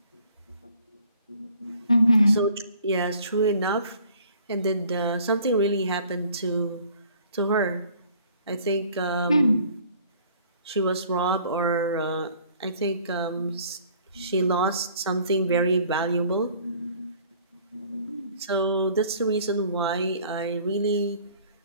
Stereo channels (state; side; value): inverted; both; correlation -0.55